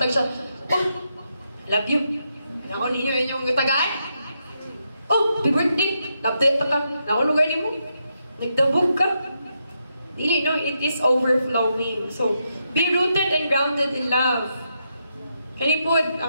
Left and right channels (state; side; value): inverted; both; correlation -0.82